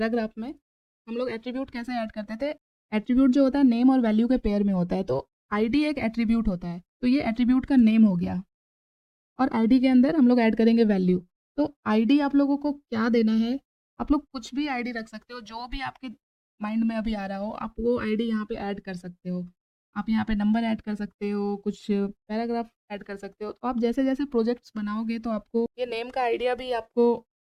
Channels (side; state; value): both; identical; correlation 1.00